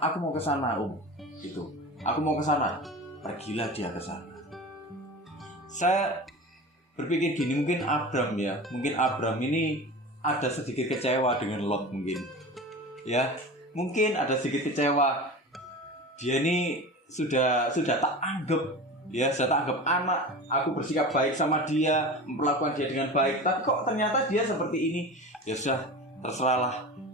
Aku mau ke sana, Om. Gitu. Aku mau ke sana. Pergilah dia ke sana. Saya berpikir gini, mungkin Abram ini ada sedikit kecewa dengan Lot mungkin. Ya, mungkin ada sedikit kecewa. Dia ini sudah tak anggap, ya, sudah tak anggap anak. Aku bersikap baik sama dia, memperlakukan dia dengan baik, tapi kok ternyata dia seperti ini. Ya sudah, terserahlah.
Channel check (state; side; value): normal; both; correlation 0.32